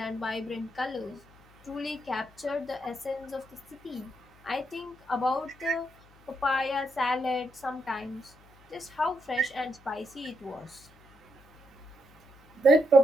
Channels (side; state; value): left; noise; hum, 27 dB below the sound